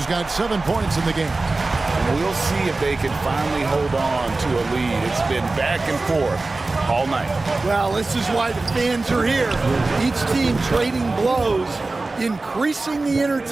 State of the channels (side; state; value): left; quieter; 3.3 dB